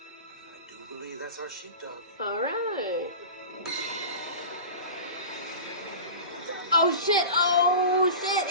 do believe that's our sheepdog. All right. Oh, shit. Oh, shit.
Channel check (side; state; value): both; inverted; correlation -0.32